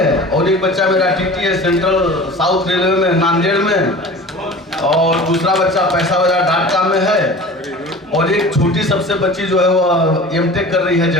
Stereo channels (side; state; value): both; normal; correlation 0.39